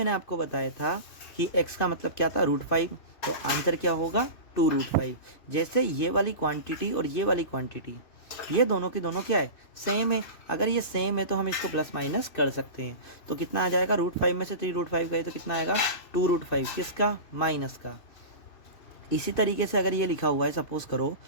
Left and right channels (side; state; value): right; late; 2.9 ms